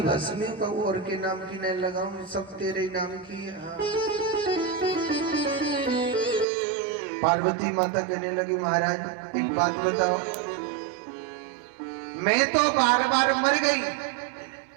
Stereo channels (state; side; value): drops out; left; at 6.5 s